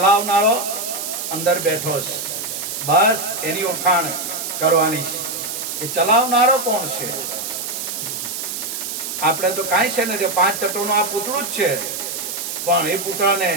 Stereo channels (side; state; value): right; noise; hiss, 5 dB below the sound